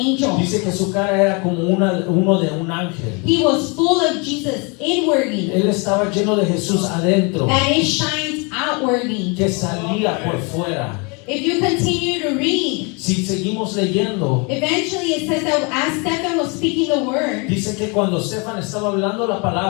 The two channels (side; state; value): right; quieter; 31.6 dB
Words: Dice que su cara era como uno de un ángel. He was full of Jesus inwardly, Él estaba lleno de Jesús adentro, that it shines outwardly. que salía por fuera. If you continue to read, Si seguimos leyendo, eventually it says that as Stephen was speaking the word, dice que cuando Estefan estaba hablando la